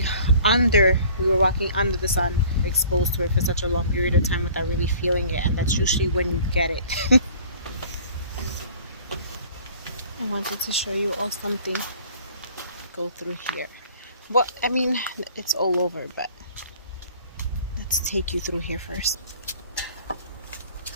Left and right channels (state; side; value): inverted; both; correlation -0.50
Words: under the sun, exposed to it for such a long period of time without really feeling it, and that's usually when you get it. I wanted to show you all something. Go through here. Well, I mean, it's all over, but let's take you through here first.